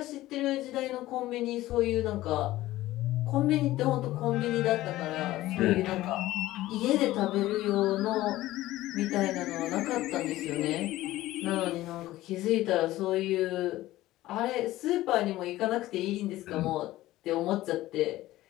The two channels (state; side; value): quieter; right; 16.2 dB